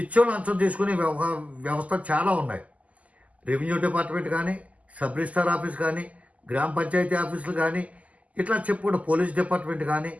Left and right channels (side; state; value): left; late; 0.072 ms